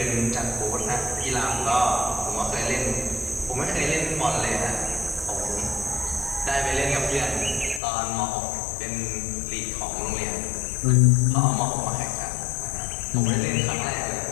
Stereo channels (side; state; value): right; drops out; at 7.8 s